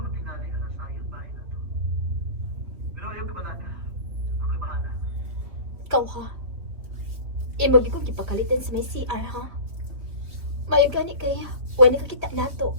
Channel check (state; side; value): late; left; 3.1 ms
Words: tingali na nasa ayot bahay na to. Pero ayaw ka ba naga? Ako'y bahala. Ikaw ha? Imo bigong gipakalitan sa may CR ha? Mayo gani kaya. Wala nakakita nato.